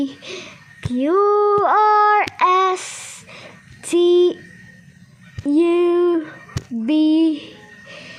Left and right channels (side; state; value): both; identical; correlation 1.00